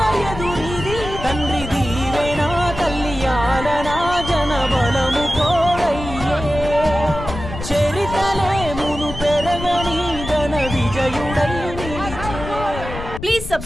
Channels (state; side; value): noise; left; rumble, 9 dB below the sound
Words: ఎదురీది తండ్రి దీవేనా తల్లి ఆలనా జన బలము తోడయ్యే చరితలే మును పెరగని ఘన విజయుడై నిలిచే. Please